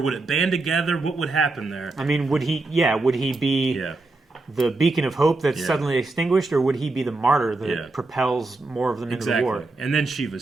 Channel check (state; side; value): quieter; left; 3.3 dB